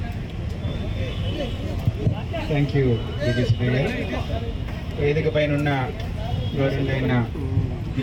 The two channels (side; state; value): both; identical; correlation 1.00